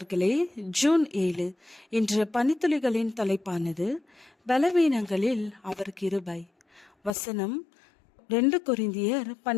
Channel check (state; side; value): drops out; right; at 7.1 s